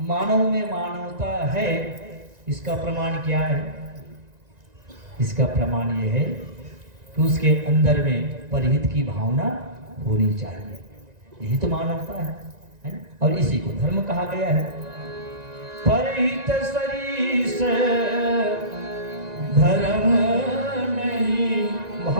में मानवता है, इसका प्रमाण क्या है? इसका प्रमाण यह है कि उसके अंदर में परहित की भावना होनी चाहिए। यही तो मानवता है ना? और इसी को धर्म कहा गया है। परहित सरीस धर्म नहीं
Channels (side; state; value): left; late; 1.9 ms